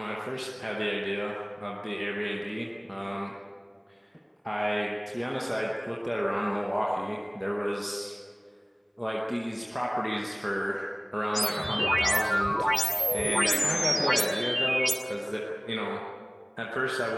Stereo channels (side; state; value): both; identical; correlation 1.00